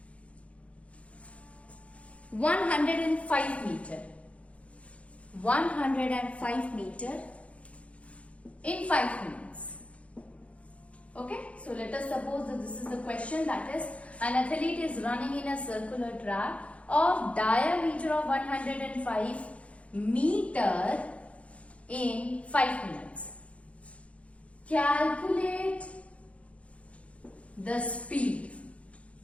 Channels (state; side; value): late; right; 0.063 ms